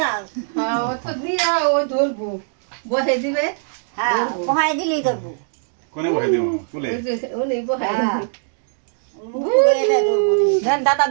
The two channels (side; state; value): left; silent; digital silence